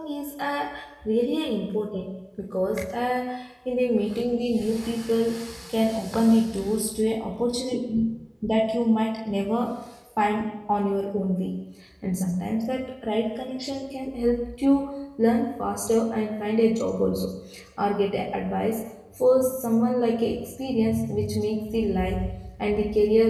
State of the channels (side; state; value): both; identical; correlation 1.00